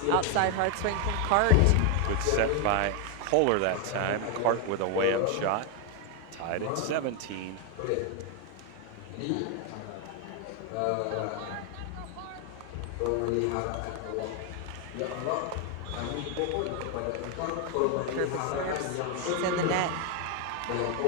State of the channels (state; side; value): different; both; correlation 0.01